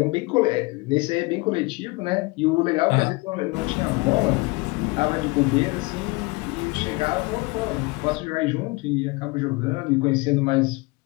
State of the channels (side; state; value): right; quieter; 25.1 dB